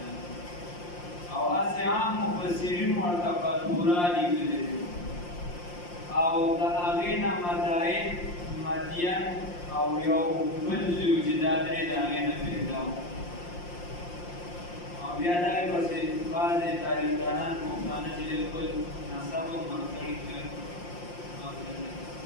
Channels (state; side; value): late; right; 5.7 ms